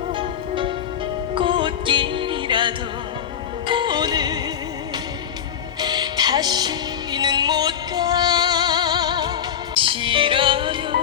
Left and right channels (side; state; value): right; quieter; 8.8 dB